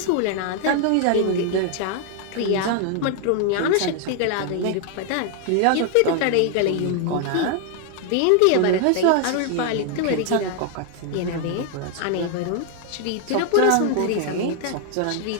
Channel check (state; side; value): different; both; correlation 0.00